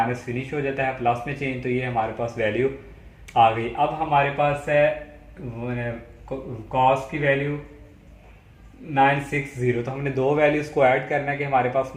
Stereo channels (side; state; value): both; identical; correlation 1.00